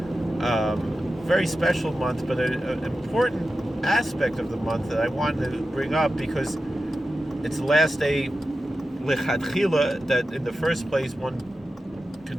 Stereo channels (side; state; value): both; normal; correlation 0.92